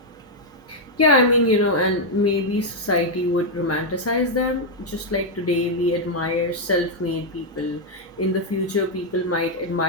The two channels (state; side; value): normal; both; correlation -0.01